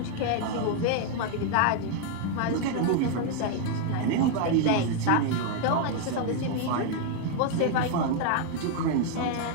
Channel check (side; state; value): both; different; correlation 0.00